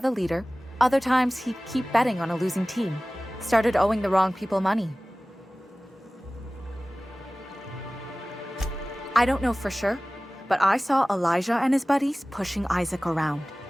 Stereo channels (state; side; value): normal; both; correlation 0.98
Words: liter, other times he'd keep betting on a losing team, started owing the wrong people money. I don't know for sure, but I saw Elijah and his buddies pushing Isaac around.